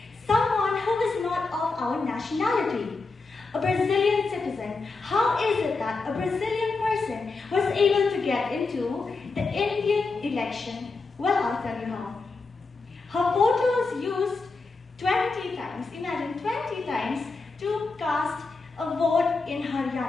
someone who is not of our nationality. A Brazilian citizen. How is it that a Brazilian person was able to get into the Indian election? Well, I'll tell you how. Her photo was used 20 times, imagine 20 times, to cast a vote in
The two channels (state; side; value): quieter; right; 3.9 dB